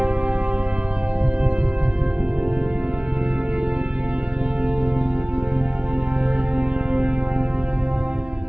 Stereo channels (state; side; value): late; left; 0.056 ms